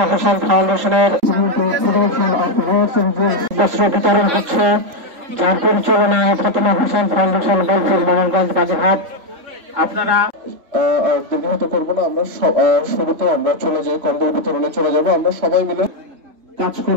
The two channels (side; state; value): left; late; 3.7 ms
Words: হোসেন ফাউন্ডেশনের বস্ত্র বিতরণ হচ্ছে, যার পরিচালনায় ফাতেমা হোসেন ফাউন্ডেশন বোলপুর মোহনগঞ্জ বাগেরহাট। আপনারা দীর্ঘায়িত করবো না, আমরা শুরুতে আমরা চলে যাই, কম্বল বিতরণে চলে যাবো আমরা সবাই মিলে কাজ